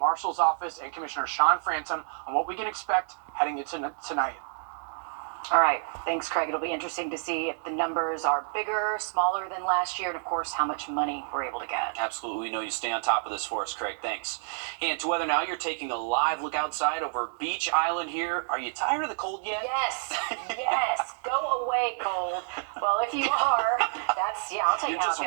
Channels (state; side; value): silent; left; digital silence